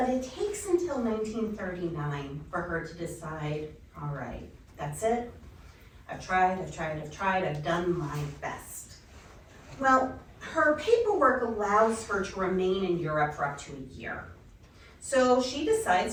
it takes until 1939 for her to decide, all right, that's it. I've tried, I've done my best. Well, her paperwork allows her to remain in Europe for up to a year. So she decides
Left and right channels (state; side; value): identical; both; correlation 1.00